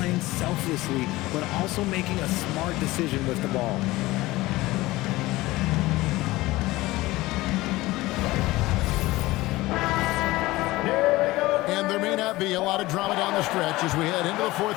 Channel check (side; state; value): right; quieter; 19.1 dB